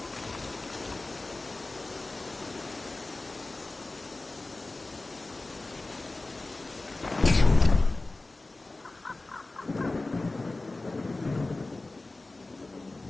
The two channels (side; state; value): right; quieter; 3.1 dB